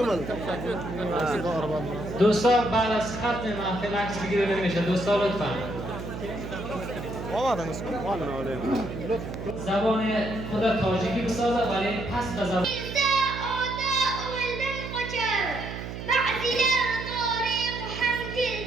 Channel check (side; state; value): right; noise; hum, 8 dB below the sound